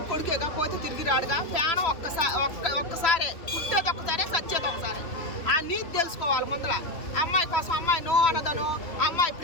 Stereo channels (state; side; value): late; right; 3.0 ms